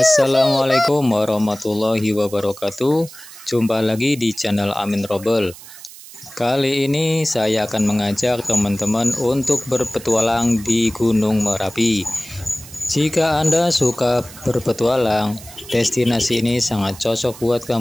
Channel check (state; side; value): noise; right; hiss, 17 dB below the sound